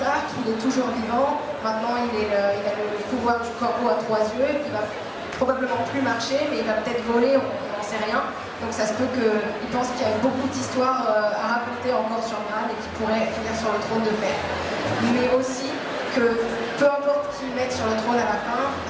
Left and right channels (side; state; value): both; identical; correlation 1.00